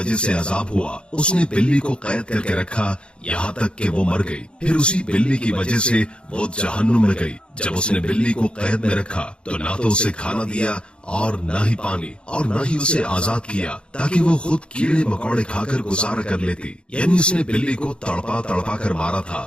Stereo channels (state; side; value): late; right; 0.055 ms